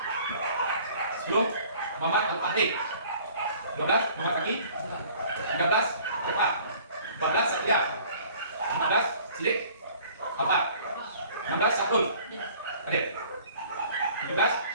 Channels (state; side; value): inverted; both; correlation -0.52